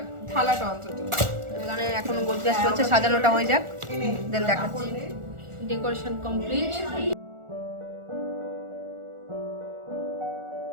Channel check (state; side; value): late; left; 1.4 ms